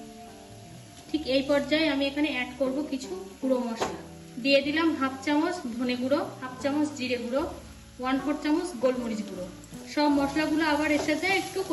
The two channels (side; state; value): both; identical; correlation 1.00